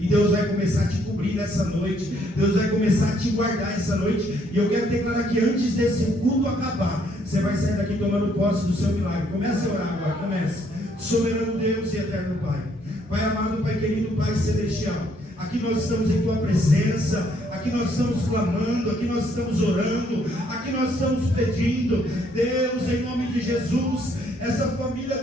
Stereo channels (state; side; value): normal; both; correlation 0.68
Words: Deus vai começar a te cobrir nessa noite, Deus vai começar a te guardar essa noite. E eu quero declarar que antes desse culto acabar, você vai sair daqui tomando posse do seu milagre. Comece a orar agora, comece. Soberano Deus e eterno Pai, Pai amado, Pai querido, Pai celestial, aqui nós estamos em Tua presença, aqui nós estamos clamando, aqui nós estamos orando, aqui nós estamos pedindo, Deus, em nome de Jesus, essa família